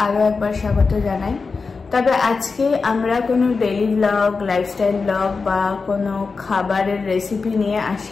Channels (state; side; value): quieter; right; 4.5 dB